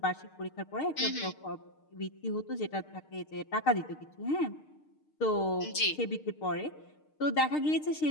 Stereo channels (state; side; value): late; right; 6.6 ms